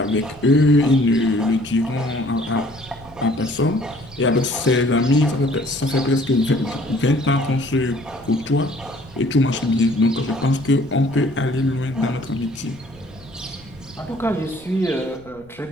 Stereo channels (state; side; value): noise; left; rumble, 24 dB below the sound